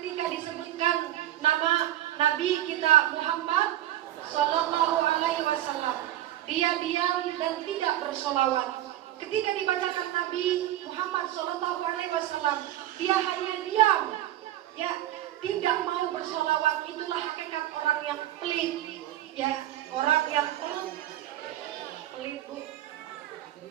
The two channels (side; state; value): left; quieter; 13.4 dB